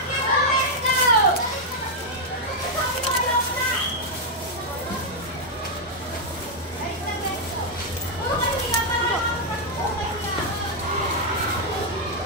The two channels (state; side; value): normal; both; correlation -0.02